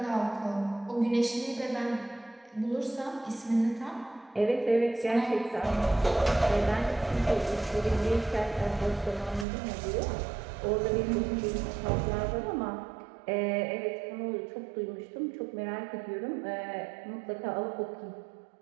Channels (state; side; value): drops out; left; at 9.5 s